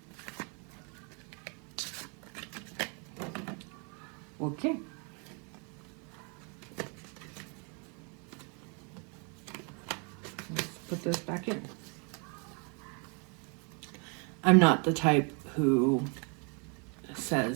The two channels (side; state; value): left; quieter; 35.7 dB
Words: Okay. Let's put this back in. I'm not the type who